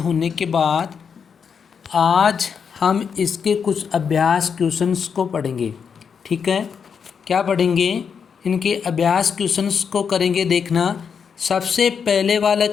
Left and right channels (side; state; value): right; quieter; 6.6 dB